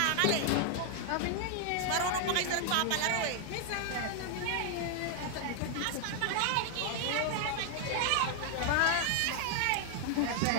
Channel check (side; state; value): both; different; correlation 0.00